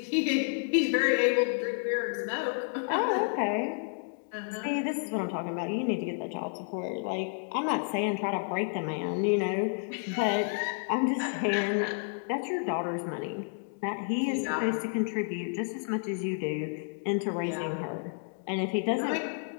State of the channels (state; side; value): silent; right; 57 dB below the other